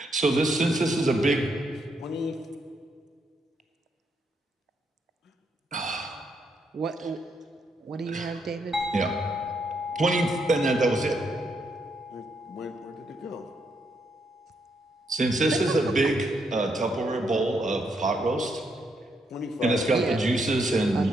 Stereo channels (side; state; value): both; normal; correlation 0.77